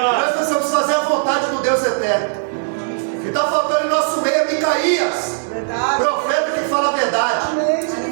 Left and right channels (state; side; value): silent; left; 63 dB below the other